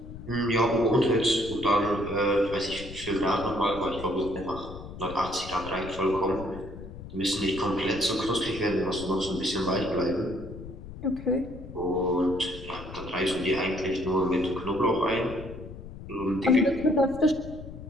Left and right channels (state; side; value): noise; left; rumble, 13 dB below the sound